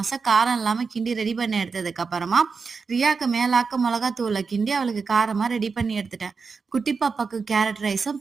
காரம் இல்லாம கிண்டி ரெடி பண்ணி எடுத்ததுக்கு அப்புறமா, ரியாக்கு மேலாக்க மிளகாத்தூள கிண்டி அவளுக்கு காரமா ரெடி பண்ணி எடுத்துட்டேன். குட்டி பாப்பாக்கு கேரட் ரைஸும்,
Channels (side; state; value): left; quieter; 5.0 dB